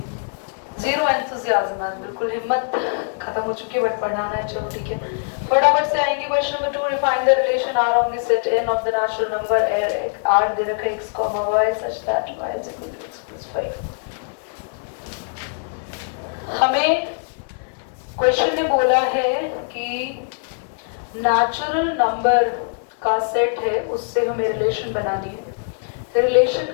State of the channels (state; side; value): silent; right; 64 dB below the other